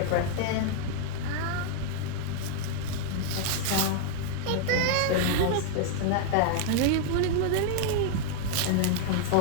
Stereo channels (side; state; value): both; different; correlation 0.00